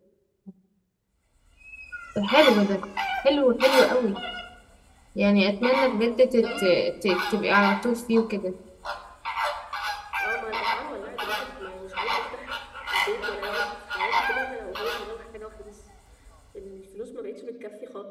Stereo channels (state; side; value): identical; both; correlation 1.00